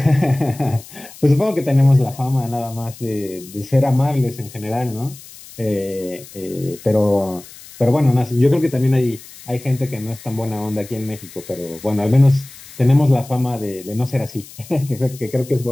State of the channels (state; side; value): noise; left; hiss, 19 dB below the sound